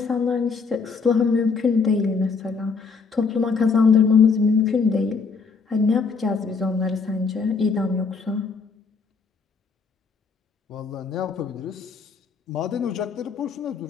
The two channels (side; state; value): right; quieter; 5.0 dB